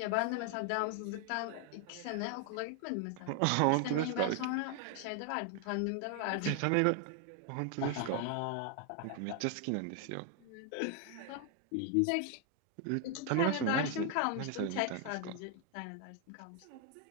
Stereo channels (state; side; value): different; both; correlation 0.01